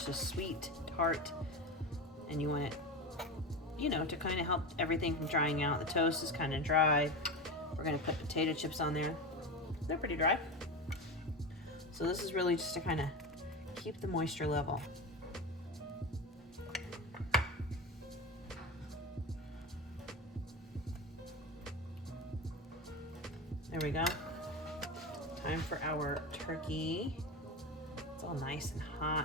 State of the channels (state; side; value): normal; both; correlation 0.23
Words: sweet tart, and you want it, you know, to kind of help everything from drying out. The toast is kind of dry. We're gonna put potato chips on there. They're pretty dry. So this is really just to kind of keep the moisture level. There we go. Time for our turkey. It's all nice and